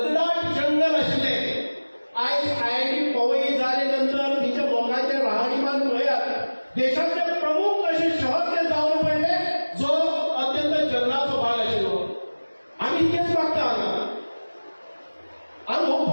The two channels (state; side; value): inverted; both; correlation -1.00